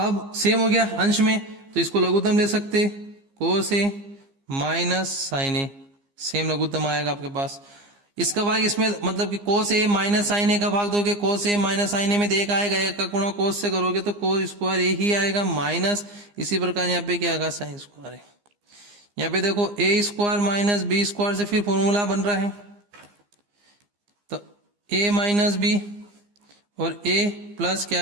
सेम हो गया अंश में तो इसको लघुत्तम ले सकते कोस ए माइनस साइन ए, सेम लघुत्तम आएगा आपके पास। इसका भाग इसमें मतलब कि कोस ए माइनस साइन ए का भाग दोगे कोस ए माइनस साइन ए में एक आएगा, एक का गुणा कोस से करोगे तो कोस स्क्वायर ए ही आएगा माइनस इसी प्रकार यहाँ पे क्या आएगा साइन स्क्वायर ए। यहाँ पे देखो ए स्क्वायर माइनस बी स्क्वायर से फिर फॉर्मूला बन रहा है तो ए माइनस बी और ए प्लस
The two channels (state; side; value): late; left; 15 ms